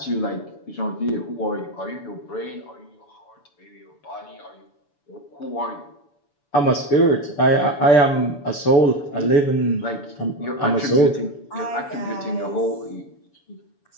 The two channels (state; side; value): late; right; 7.0 ms